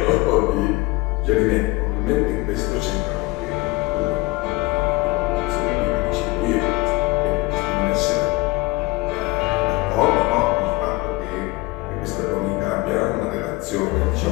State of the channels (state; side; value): quieter; right; 22.1 dB